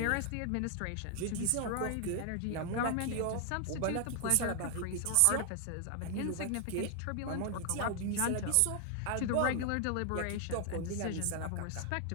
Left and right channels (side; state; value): both; different; correlation 0.00